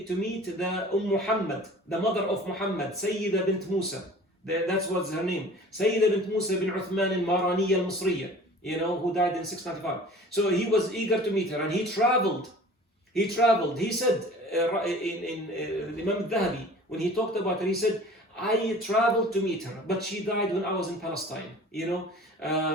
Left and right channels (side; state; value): both; normal; correlation 0.44